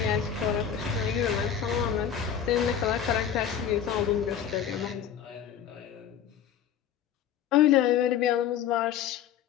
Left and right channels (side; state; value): right; quieter; 8.9 dB